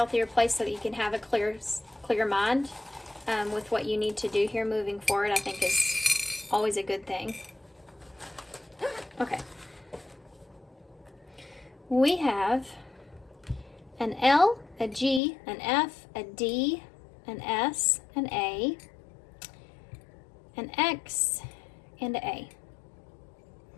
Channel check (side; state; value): right; drops out; at 15.2 s